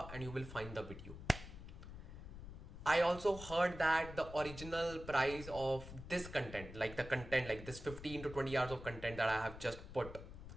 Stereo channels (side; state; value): left; noise; rumble, 12 dB below the sound